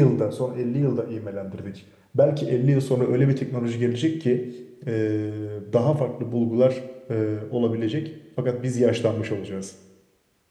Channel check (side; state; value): both; identical; correlation 1.00